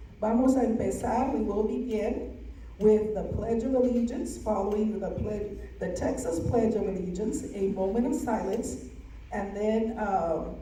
Vamos a empezar, we will begin with the Pledge of Allegiance, following the Texas Pledge of Allegiance, a moment of silence, and then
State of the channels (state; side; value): identical; both; correlation 1.00